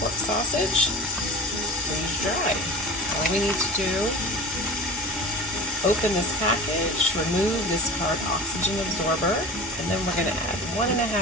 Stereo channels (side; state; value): both; normal; correlation 0.34